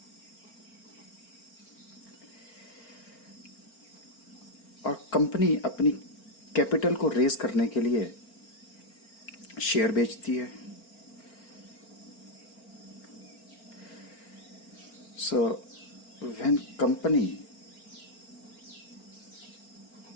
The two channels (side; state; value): right; late; 4.4 ms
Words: और कंपनी अपनी कैपिटल को रेज करने के लिए शेयर बेचती है। So when company